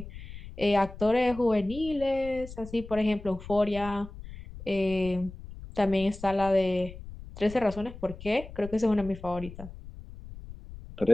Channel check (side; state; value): left; noise; rumble, 14 dB below the sound